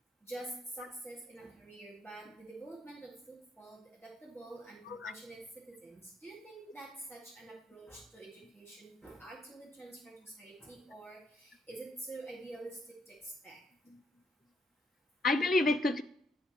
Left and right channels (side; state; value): both; normal; correlation 0.74